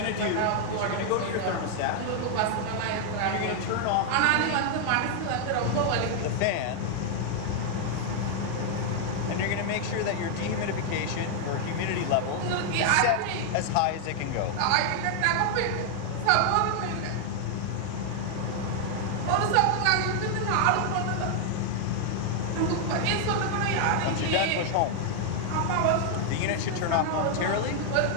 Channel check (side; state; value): both; different; correlation 0.00